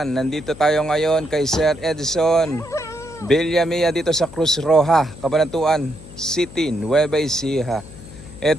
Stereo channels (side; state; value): left; noise; hum, 18 dB below the sound